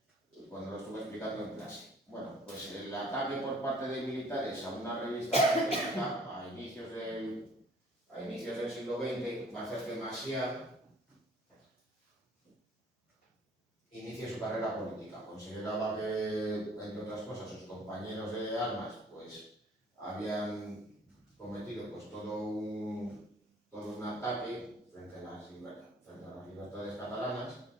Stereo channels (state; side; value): normal; both; correlation 0.55